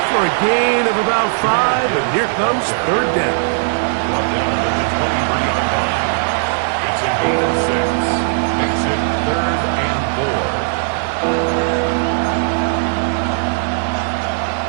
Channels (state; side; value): silent; left; digital silence